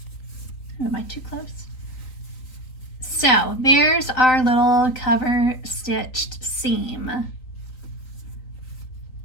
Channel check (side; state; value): right; late; 3.9 ms